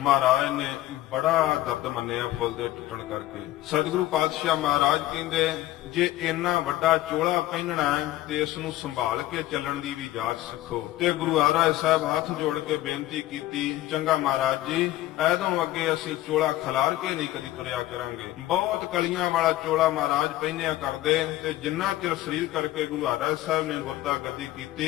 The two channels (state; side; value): quieter; right; 15.6 dB